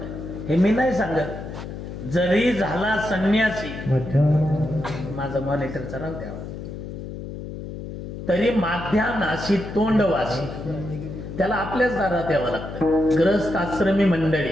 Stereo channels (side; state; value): left; noise; hum, 9 dB below the sound